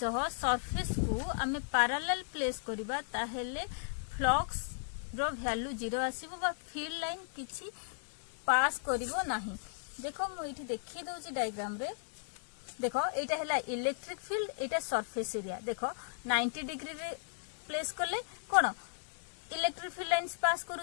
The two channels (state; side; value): silent; right; 54 dB below the other